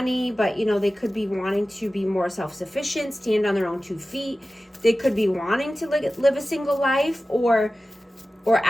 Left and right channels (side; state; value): both; normal; correlation 0.95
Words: but you know, they could be wanting to be more self-sufficient, stand on their own 2 feet. They could be wanting to live a single life or